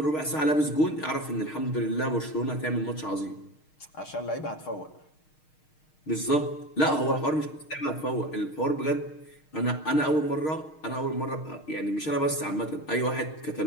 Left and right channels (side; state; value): right; late; 6.5 ms